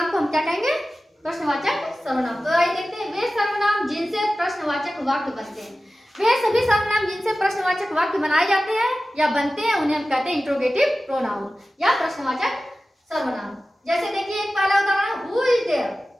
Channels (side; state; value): both; normal; correlation 0.95